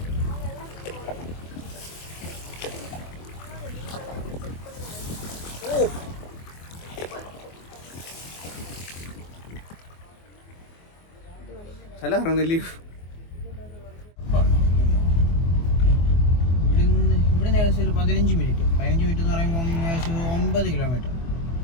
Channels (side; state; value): right; late; 24 ms